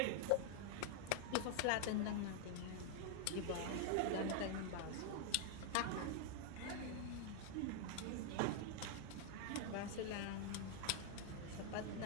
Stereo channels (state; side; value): different; both; correlation 0.00